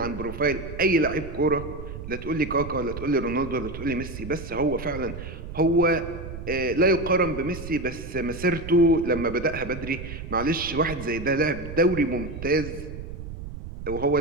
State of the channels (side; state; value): right; noise; rumble, 10 dB below the sound